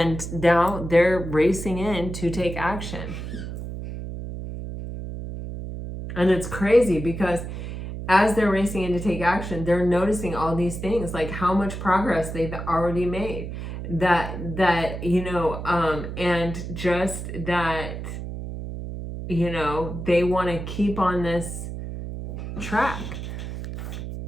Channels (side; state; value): right; noise; hum, 7 dB below the sound